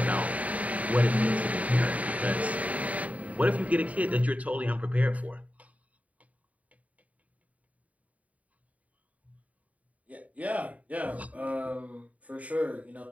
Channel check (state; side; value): late; left; 0.070 ms